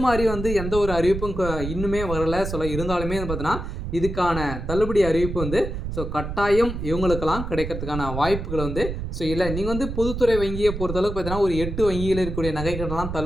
மாதிரி எந்த ஒரு அறிவிப்பும் இன்னுமே வரலை. இருந்தாலுமே பார்த்தீங்கன்னா, இதுக்கான தள்ளுபடி அறிவிப்பு கட்டாயம் இவங்களுக்கெல்லாம் கிடைக்கிறதுக்கான வாய்ப்புகள் இல்லை. நீங்கள் பொதுத்துறை வங்கியை பொறுத்தளவுக்கு பார்த்தீங்கன்னா, ஒரு 8 வங்கியில் இருக்கக்கூடிய நகைக்கடன்லாம்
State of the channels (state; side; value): noise; right; rumble, 6 dB below the sound